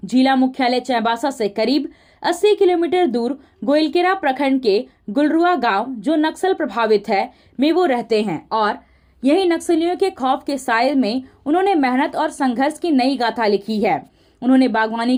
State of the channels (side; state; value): both; identical; correlation 1.00